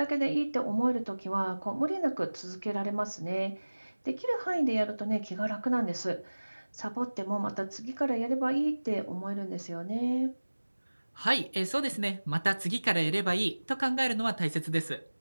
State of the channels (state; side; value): inverted; both; correlation -1.00